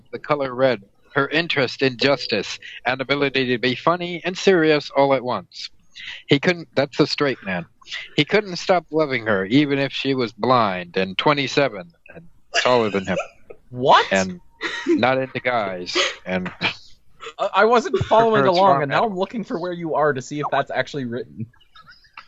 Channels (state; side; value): identical; both; correlation 1.00